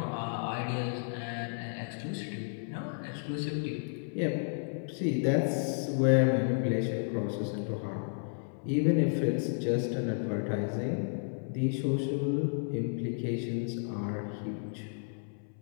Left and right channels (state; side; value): silent; right; 56 dB below the other